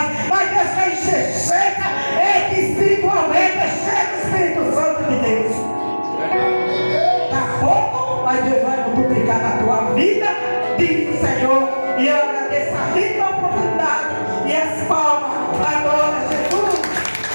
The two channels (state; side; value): inverted; both; correlation -1.00